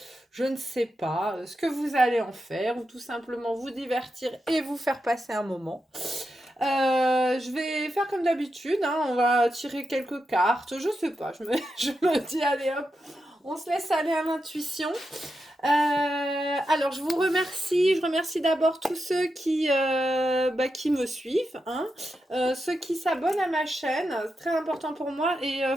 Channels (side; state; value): both; normal; correlation 0.87